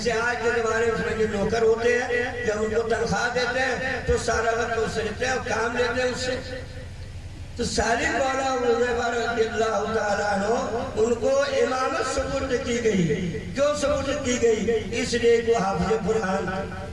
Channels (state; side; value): identical; both; correlation 1.00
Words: آج کے زمانے میں اس میں جو نوکر ہوتے ہیں، جب ان کو تنخواہ دیتے ہیں تو سارا وقت اس سے لیتے ہیں اور کام لیتے ہیں اس سے۔ تو سالم مولا حذیفہ رضی اللہ تعالیٰ عنہ ان کو امامت سپرد کی گئی۔ کیوں سپرد کی گئی؟ اس لیے وہ حافظ